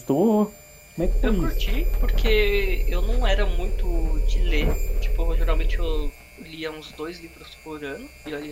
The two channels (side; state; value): both; identical; correlation 1.00